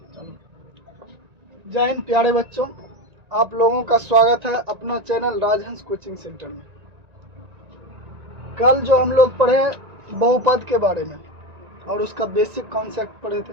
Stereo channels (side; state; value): left; late; 1.9 ms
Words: हिंद प्यारे बच्चों, आप लोगों का स्वागत है अपना चैनल राजहंस कोचिंग सेंटर में। कल जो हम लोग पढ़े बहुपद के बारे में और उसका बेसिक कॉन्सेप्ट पढ़े थे।